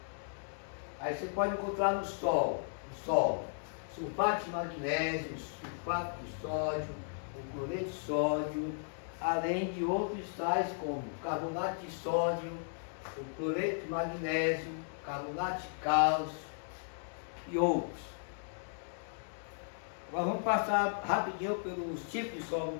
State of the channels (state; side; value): silent; right; digital silence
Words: Aí você pode encontrar no solo sulfato de magnésio, sulfato de sódio, o cloreto de sódio, além de outros sais como carbonato de sódio, o cloreto de magnésio, carbonato de cálcio e outros. Agora vamos passar rapidinho pelos tipos de solo no